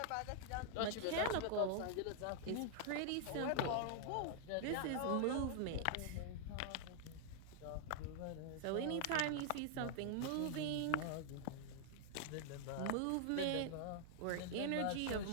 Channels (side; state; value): both; different; correlation -0.01